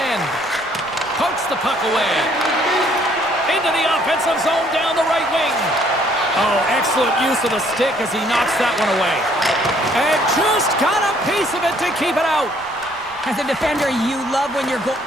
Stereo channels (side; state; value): right; noise; rumble, 25 dB below the sound